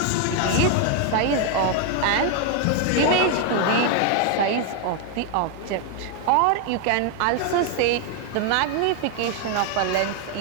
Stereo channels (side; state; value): both; different; correlation 0.00